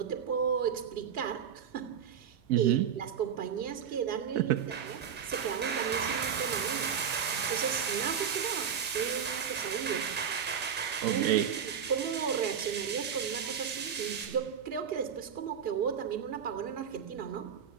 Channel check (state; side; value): quieter; left; 7.8 dB